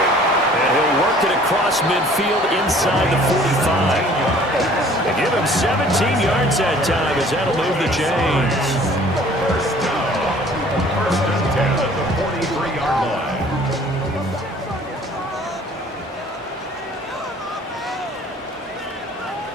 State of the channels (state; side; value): normal; both; correlation 0.53